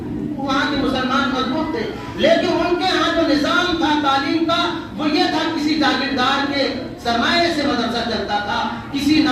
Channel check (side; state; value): both; identical; correlation 1.00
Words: وہاں کے مسلمان مضبوط تھے، لیکن ان کے ہاں جو نظام تھا تعلیم کا، وہ یہ تھا کسی جاگیردار کے سرمایے سے مدرسہ چلتا تھا، کسی